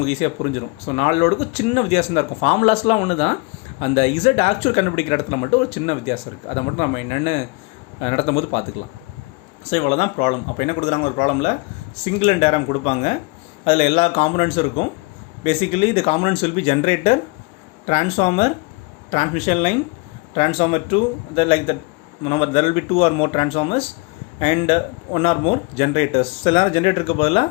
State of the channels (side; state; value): right; quieter; 28.0 dB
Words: ஈஸியாக புரிஞ்சிடும். ஸோ 4 லோடுக்கும் சின்ன வித்தியாசம் தான் இருக்கும், ஃபார்முலாஸ்லாம் ஒன்று தான், அந்த இசட் ஆக்சுவல் கண்டுபிடிக்கிற இடத்துல மட்டும் ஒரு சின்ன வித்தியாசம் இருக்குது. அதை மட்டும் நம்ம என்னென்னு நடத்தும் போது பார்த்துக்கலாம். ஸோ இவ்வளோ தான் ப்ராப்ளம். அப்போ என்ன கொடுக்குறாங்க, ஒரு ப்ராப்ளமில் சிங்கிள் அண்ட் டயக்ராம் கொடுப்பாங்க, அதில் எல்லா காம்பனன்ட்ஸும் இருக்கும். Basically the components will be generator, transformer, transmission line, transformer 2, like that. There will be 2 or more transformers and 1 or more generators. சில நேரம் ஜென்ரேட்டருக்கு பதிலாக